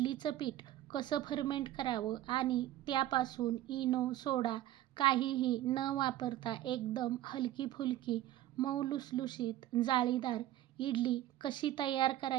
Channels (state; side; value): quieter; left; 13.9 dB